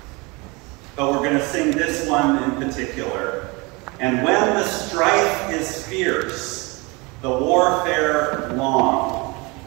But we're going to sing this one in particular. And when the strife is fierce, the warfare long,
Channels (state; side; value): quieter; left; 26.7 dB